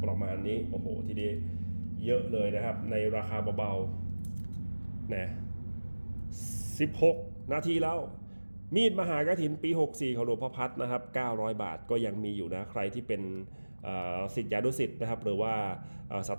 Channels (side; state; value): both; inverted; correlation -1.00